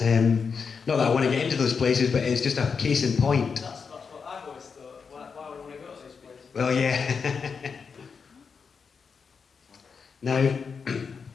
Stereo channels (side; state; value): right; quieter; 5.7 dB